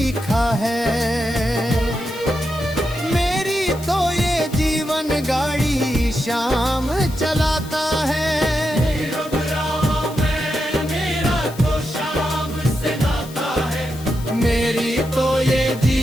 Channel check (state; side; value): noise; left; hiss, 18 dB below the sound